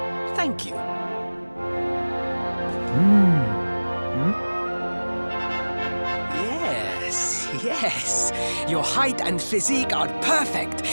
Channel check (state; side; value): inverted; both; correlation -1.00